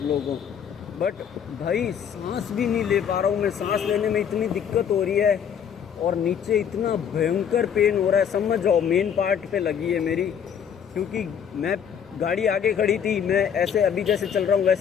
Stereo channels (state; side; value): quieter; right; 8.0 dB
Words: लोगों को। बट भाई सांस भी नहीं ले पा रहा हूँ मैं, सांस लेने में इतनी दिक्कत हो रही है और नीचे इतना भयंकर पेन हो रहा है। समझ जाओ मेन पार्ट पे लगी है मेरी, क्योंकि मैं गाड़ी आगे खड़ी थी, मैं ऐसे अभी जैसे चल रहा हूँ